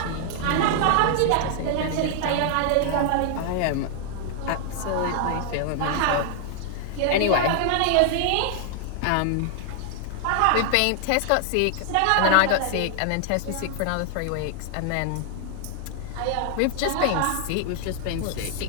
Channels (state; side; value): different; both; correlation 0.00